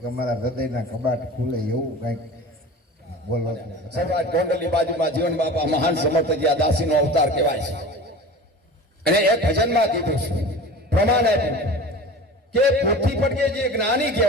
અમારા હૃદયના કબાટ ખુલે એવું કંઈક બોલો. સર્વાજ ગોંડલની બાજુમાં જીવન બાપા મહાન સમર્થજી આ દાસીનો અવતાર કહેવાય છે. અને એક ભજનમાં કીધું છે, પ્રમાણ આપ્યું કે પોથી પડકે જે જ્ઞાની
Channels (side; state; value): both; normal; correlation 0.36